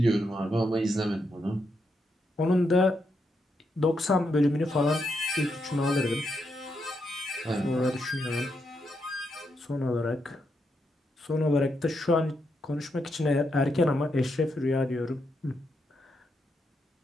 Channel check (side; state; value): both; normal; correlation 0.81